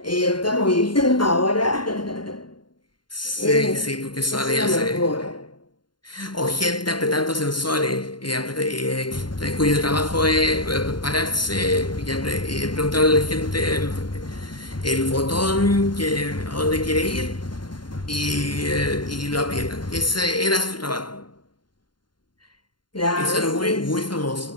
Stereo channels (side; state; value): right; late; 0.71 ms